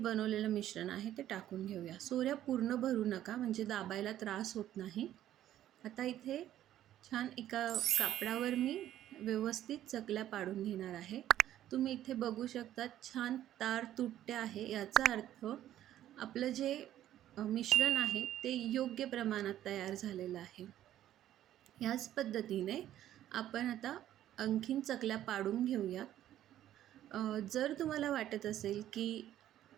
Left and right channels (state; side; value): quieter; left; 12.3 dB